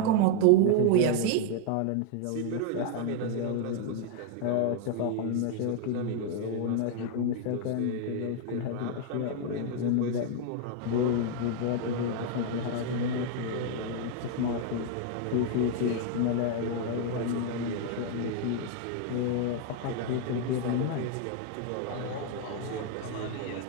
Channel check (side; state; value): both; different; correlation 0.00